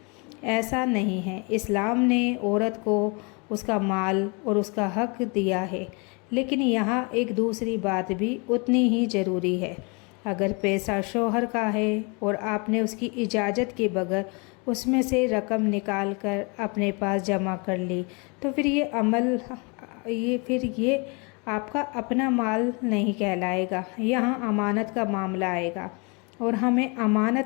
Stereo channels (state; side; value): quieter; right; 31.5 dB